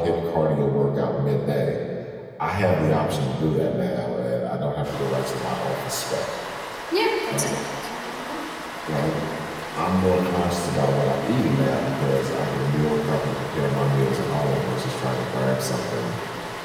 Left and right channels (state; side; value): identical; both; correlation 1.00